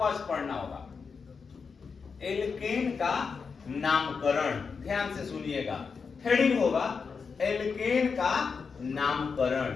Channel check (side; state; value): right; quieter; 5.4 dB